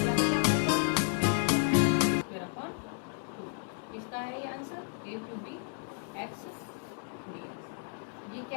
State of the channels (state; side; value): silent; right; 56 dB below the other